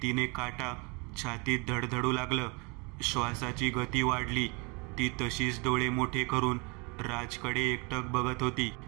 काटा छातीत धडधडू लागलं. श्वासाची गती वाढली. ती तशीच डोळे मोठे करून राजकडे एकटक बघत होती.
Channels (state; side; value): quieter; left; 30.0 dB